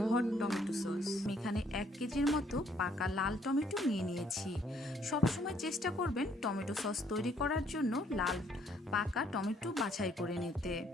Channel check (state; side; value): normal; both; correlation 0.66